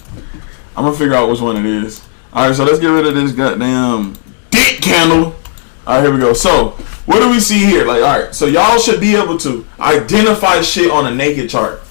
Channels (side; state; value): right; silent; digital silence